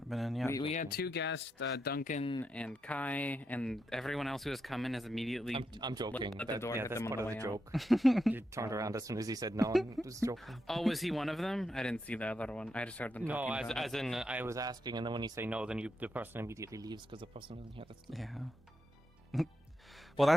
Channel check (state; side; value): normal; both; correlation 0.84